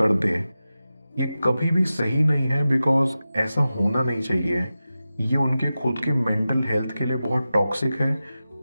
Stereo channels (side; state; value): both; inverted; correlation -0.94